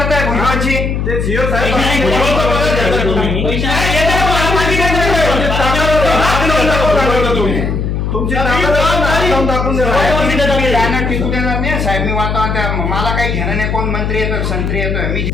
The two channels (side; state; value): left; noise; hum, 1 dB below the sound